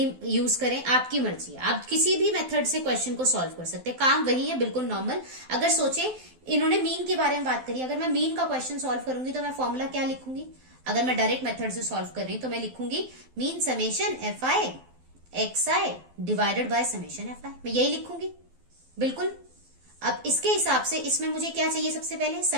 यूज करें, आपकी मर्जी है। आप किसी भी मेथड से क्वेश्चन को सॉल्व कर सकते हैं, काम वही है, बिल्कुल नॉर्मल। अगर सोचे इन्होंने मीन के बारे में बात करी, अगर मैं मीन का क्वेश्चन सॉल्व करूंगी तो मैं फॉर्मूला क्या लिखूंगी, अगर मैं डायरेक्ट मेथड से सॉल्व कर रही हूं तो मैं लिखूंगी mean summation FI XI divided by summation FI, मैं यही लिखूंगी बिल्कुल। अब इसके हिसाब से इसमें मुझे क्या चाहिए, सबसे पहले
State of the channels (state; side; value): late; left; 12 ms